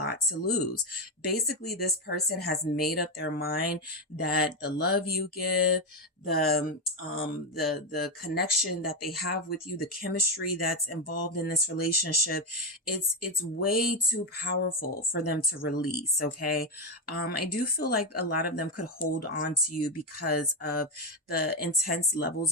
to lose. Basically, this person has made up their mind that the love you give, the connection that they have with you, the chemistry that's involved in this relationship, it's way too powerful for them to release. Okay. I do feel like a lot of them could hold on to you because of the intense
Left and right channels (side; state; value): both; normal; correlation 0.08